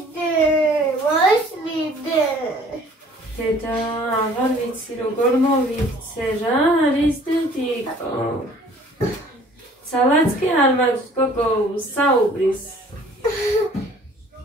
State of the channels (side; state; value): both; normal; correlation 0.54